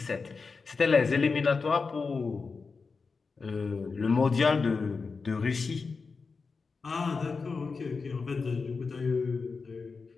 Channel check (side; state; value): right; quieter; 4.6 dB